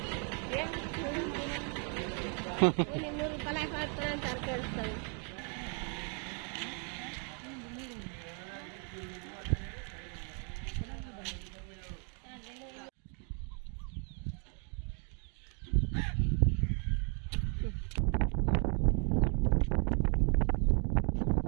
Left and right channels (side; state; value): left; quieter; 40.0 dB